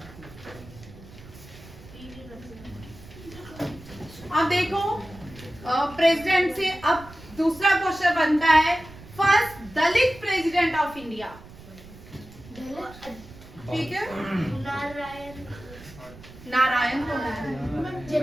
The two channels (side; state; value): right; noise; rumble, 19 dB below the sound